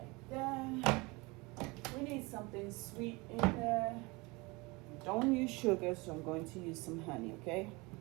there. We need something sweet in there. Don't use sugar, so I'm going to use some honey, okay?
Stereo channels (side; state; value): left; quieter; 25.2 dB